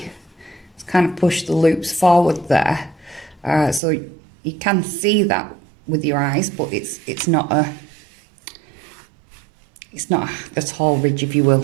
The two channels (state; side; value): drops out; left; at 3.8 s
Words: it's kind of pushed the loops forward there. So you can see that with your eyes, but it's not a tall ridge, if you